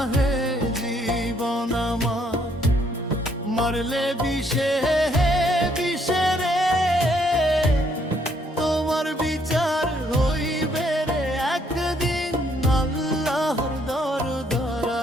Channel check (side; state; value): both; normal; correlation 0.69